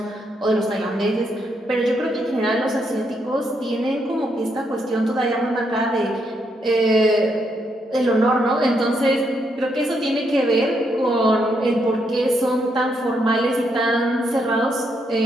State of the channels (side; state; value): both; normal; correlation 0.77